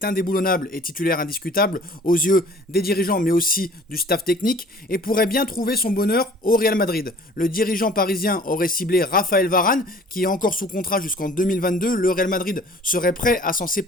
indéboulonnable et titulaire indiscutable aux yeux des dirigeants mais aussi du staff technique et pourrait bien trouver son bonheur au Real Madrid. Le dirigeant parisien aurait ciblé Raphaël Varane qui est encore sous contrat jusqu'en 2022. Le Real Madrid serait prêt à s'en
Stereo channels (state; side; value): normal; both; correlation 0.50